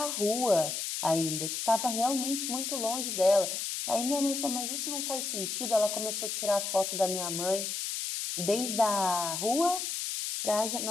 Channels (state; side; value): noise; left; hiss, 3 dB below the sound